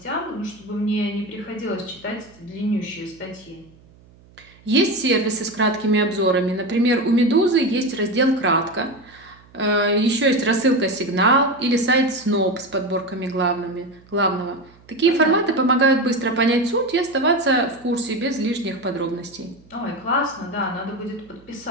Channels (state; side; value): noise; right; hum, 27 dB below the sound